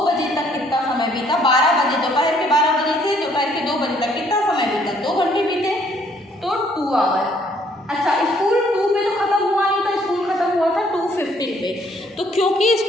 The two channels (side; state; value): both; normal; correlation 0.64